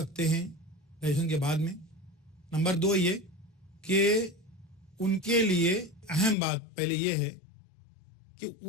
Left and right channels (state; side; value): drops out; right; at 6.4 s